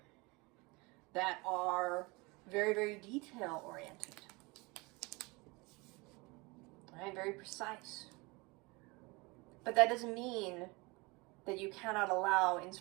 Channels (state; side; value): quieter; left; 25.8 dB